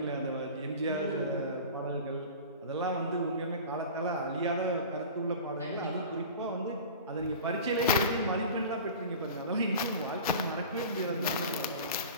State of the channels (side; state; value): both; inverted; correlation -0.36